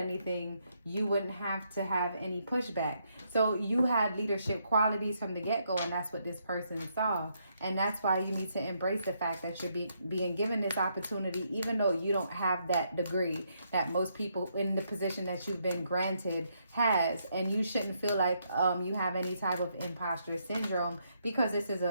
you wouldn't have to have any pushback. So you had leadership qualities from the get-go, and that's what this person saw. And that's why you need to embrace the fact that you're being given this opportunity, even though you don't have that degree that most people in the position that you've been granted has. And you shouldn't feel like you have any type of imposter syndrome, because this is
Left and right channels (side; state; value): both; inverted; correlation -0.76